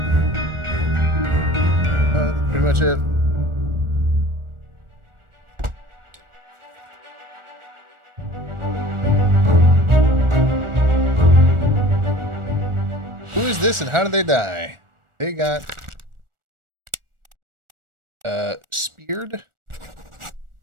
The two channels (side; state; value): left; late; 1.4 ms